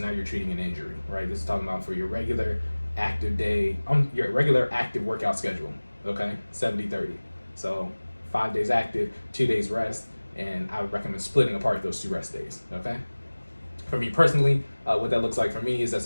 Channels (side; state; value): both; inverted; correlation -1.00